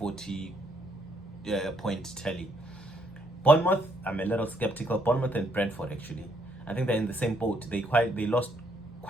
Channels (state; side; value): normal; both; correlation 0.71